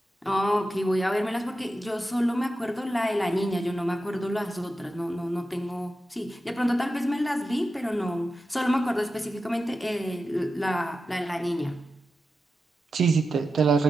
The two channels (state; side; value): normal; both; correlation 0.91